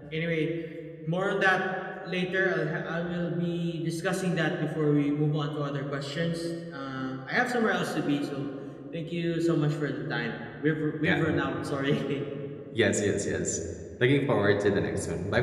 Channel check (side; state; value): both; identical; correlation 1.00